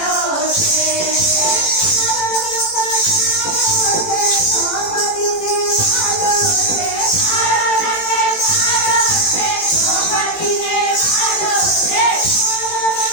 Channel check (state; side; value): late; right; 18 ms